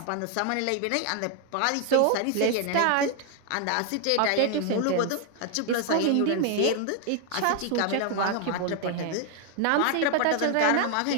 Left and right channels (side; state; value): both; different; correlation 0.00